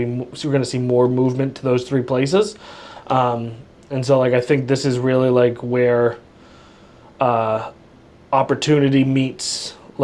to see more movement to those three places. And so like I think this is really like where opportunity meets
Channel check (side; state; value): both; identical; correlation 1.00